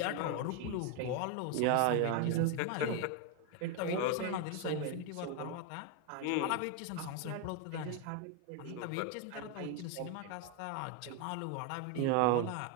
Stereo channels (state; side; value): different; both; correlation 0.01